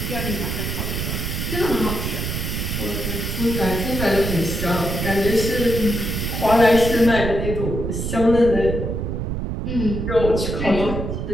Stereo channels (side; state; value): right; noise; rumble, 3 dB below the sound